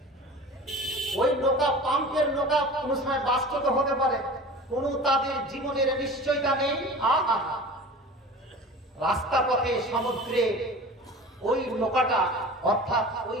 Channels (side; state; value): both; normal; correlation 0.38